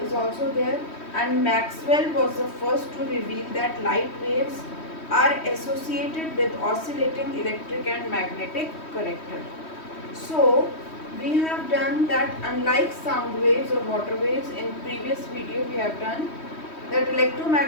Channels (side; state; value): right; late; 3.1 ms